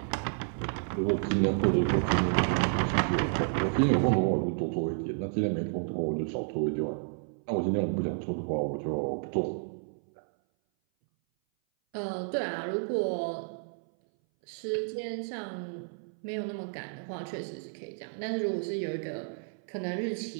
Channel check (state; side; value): silent; left; 57 dB below the other